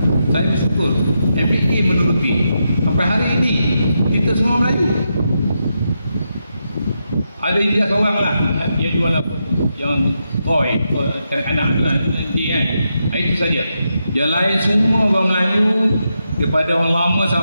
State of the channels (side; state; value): both; inverted; correlation -0.84